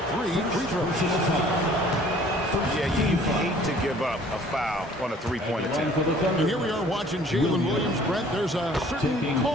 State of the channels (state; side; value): normal; both; correlation 0.54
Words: free throws. Yeah, you hate to give up a foul on a three-point attempt. And here we are watching Jalen Williams. Brent, there's a certain